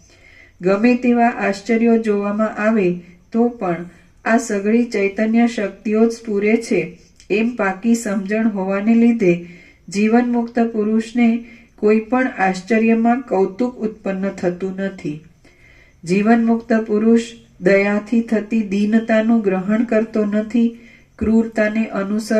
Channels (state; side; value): identical; both; correlation 1.00